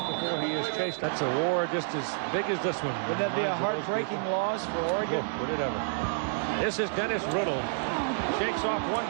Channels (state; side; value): silent; left; 58 dB below the other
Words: before he is chased. That's a war just as big as this one. Would that be a heartbreaking loss for Oregon? Would it ever? This is Dennis Riddle. Shakes off one